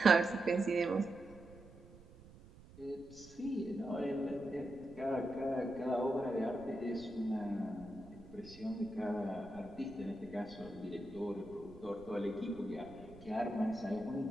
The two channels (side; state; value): right; noise; rumble, 20 dB below the sound